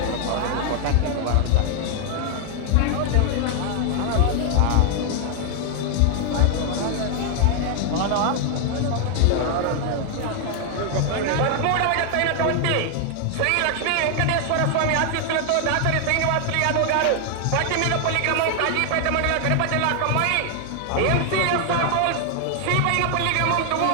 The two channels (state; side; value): different; both; correlation 0.00